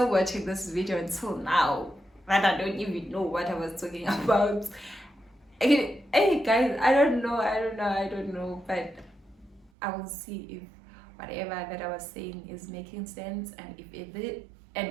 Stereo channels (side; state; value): left; drops out; at 9.7 s